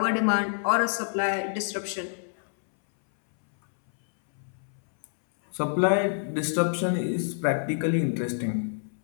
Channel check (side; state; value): right; silent; 60 dB below the other